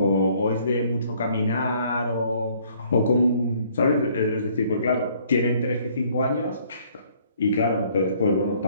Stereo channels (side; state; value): both; inverted; correlation -0.62